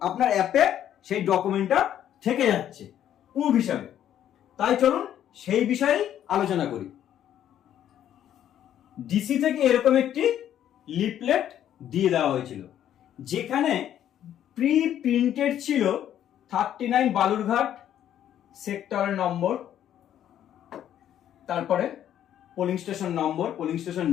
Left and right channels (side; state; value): right; quieter; 10.8 dB